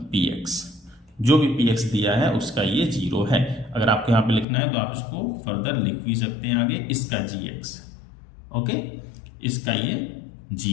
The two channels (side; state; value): right; drops out; at 4.5 s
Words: px। जो भी px दिया है उसका ये 0 है। अगर आपको यहाँ पे लिखना है तो आप इसको फर्दर लिख भी सकते हैं आगे, इसका gx, ओके, इसका ये